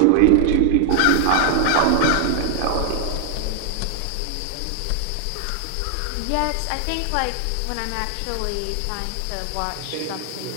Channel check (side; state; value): both; different; correlation 0.00